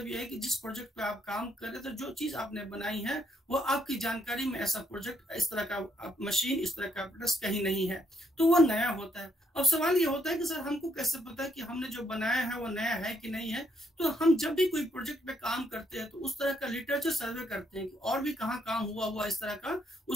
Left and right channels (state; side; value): normal; both; correlation 0.75